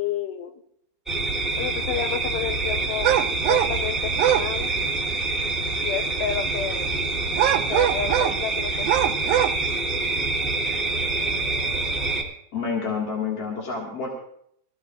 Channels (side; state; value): left; quieter; 3.1 dB